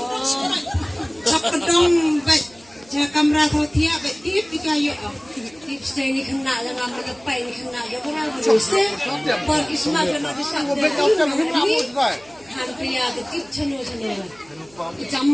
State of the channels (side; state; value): right; noise; hum, 28 dB below the sound